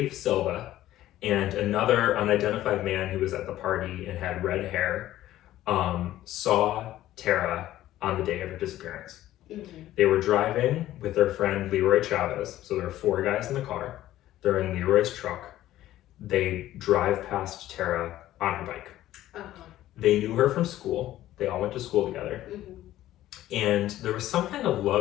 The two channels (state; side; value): quieter; right; 14.1 dB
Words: Silva, and another unidentified man who was at the party and had red hair, saw Tara on the day of her disappearance. They were driving with their friend Leroy Chavez, so there are 4 guys in the car. They're in Leroy's truck. They drive past Tara on her bike. They knew her from school. They all went to school together. And there was some kind of